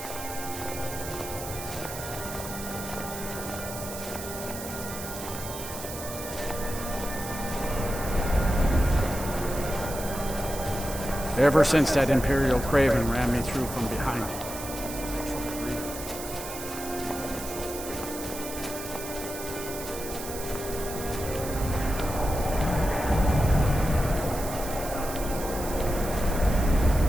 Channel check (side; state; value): right; noise; hiss, 10 dB below the sound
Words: Ever since that Imperial Craven ran me through from behind.